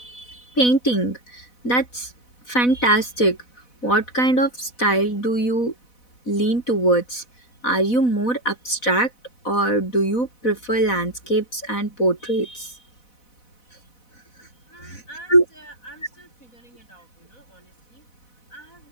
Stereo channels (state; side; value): late; right; 4.1 ms